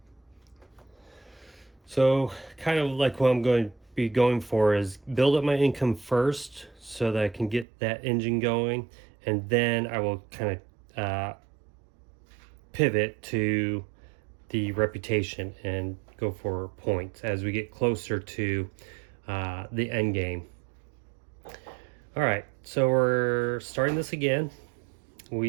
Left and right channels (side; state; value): left; drops out; at 7.7 s